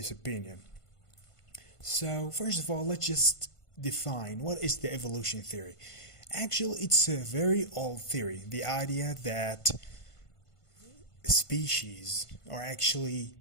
opinion. So first of all, let's just define what is the evolution theory. Actually, it's a very old theory. The idea that species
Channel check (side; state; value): right; late; 1.5 ms